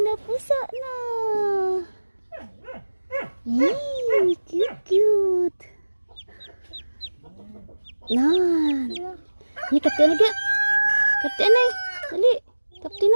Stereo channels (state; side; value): inverted; both; correlation -1.00